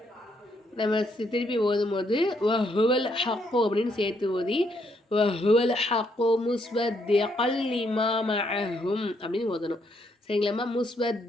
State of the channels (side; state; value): both; normal; correlation 0.74